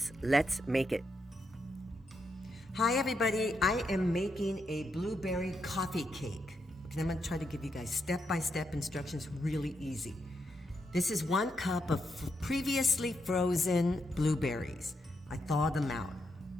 Let's make it. Hi everybody, I am making a blueberry coffee cake. And I'm gonna try to give you guys step-by-step instructions, really easy. This is 1 cup of previously frozen blueberries. I thawed them out.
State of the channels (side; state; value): both; normal; correlation 0.82